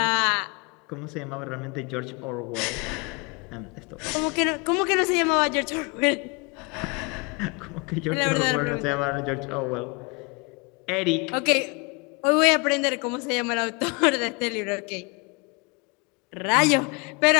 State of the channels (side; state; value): right; quieter; 30.4 dB